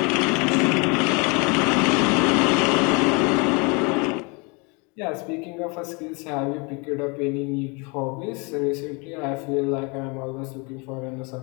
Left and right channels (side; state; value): right; quieter; 30.7 dB